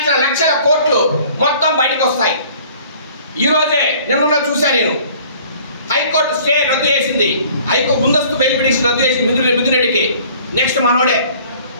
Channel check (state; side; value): inverted; both; correlation -0.52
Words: లక్షల కోట్లు మొత్తం బయటకు వస్తాయి. ఈరోజే నిన్న చూశాను నేను, హైకోర్టు స్టే రద్దు చేసింది. హైకోర్టు ముందస్తు బెయిల్ పిటిషన్ రద్దు చేసింది మిథున్ రెడ్డికి. నెక్స్ట్ మనోడే